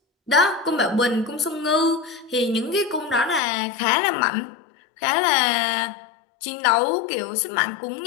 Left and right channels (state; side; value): drops out; right; at 3.4 s